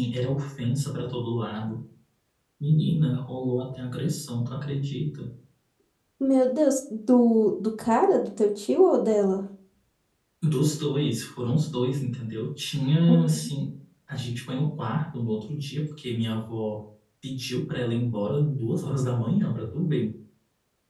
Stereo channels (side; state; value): both; identical; correlation 1.00